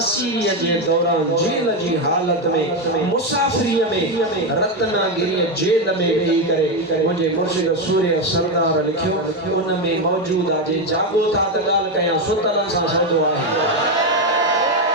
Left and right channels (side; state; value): both; normal; correlation 0.09